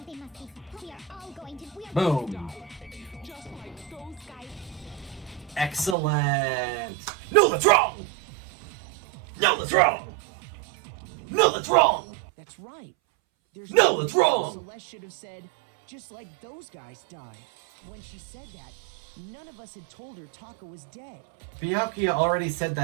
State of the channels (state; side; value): drops out; left; at 6.0 s